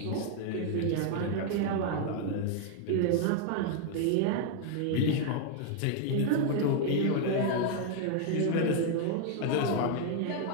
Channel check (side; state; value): both; different; correlation 0.00